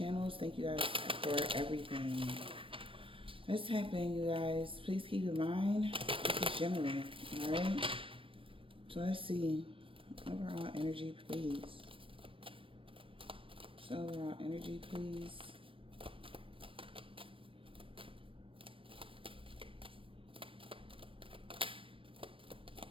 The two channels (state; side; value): late; left; 0.25 ms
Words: Thank you guys for everything. Let's tap in, you guys. Please keep in mind, this is general, all right? So let's see. Overall energy, please. So overall energy, please.